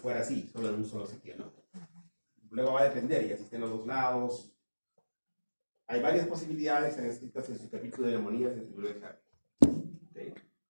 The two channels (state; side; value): inverted; both; correlation -1.00